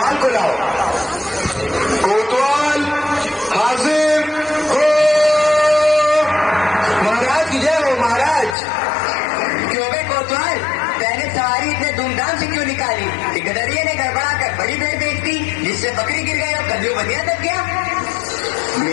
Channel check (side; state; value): right; drops out; at 8.6 s